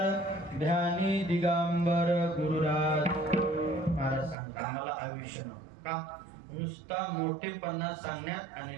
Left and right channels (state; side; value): drops out; left; at 4.4 s